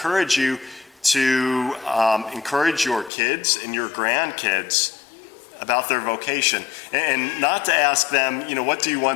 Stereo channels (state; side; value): drops out; right; at 3.1 s